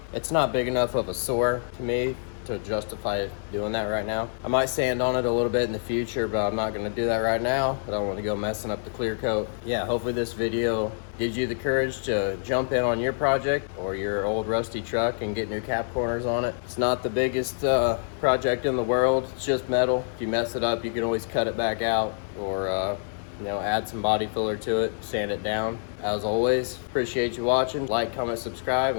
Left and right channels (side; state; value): right; silent; digital silence